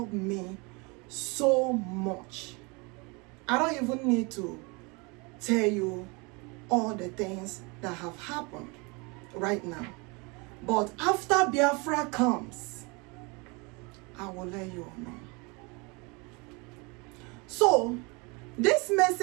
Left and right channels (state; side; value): quieter; left; 28.7 dB